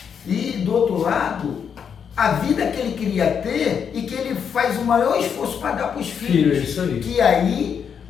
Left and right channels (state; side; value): quieter; right; 7.3 dB